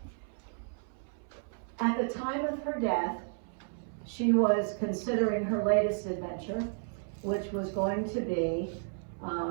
At the time of her death, she was considering her latest adventure, which was going to be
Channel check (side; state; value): left; silent; 56 dB below the other